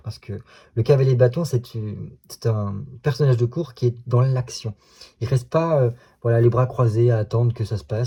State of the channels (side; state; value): both; identical; correlation 1.00